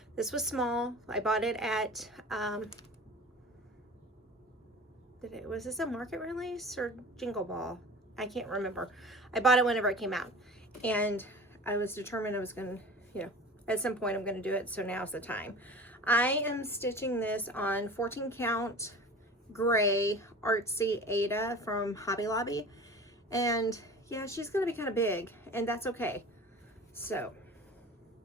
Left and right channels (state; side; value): normal; both; correlation 0.38